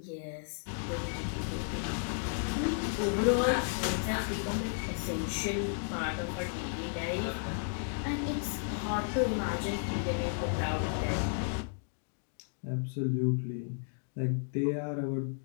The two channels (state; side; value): silent; right; digital silence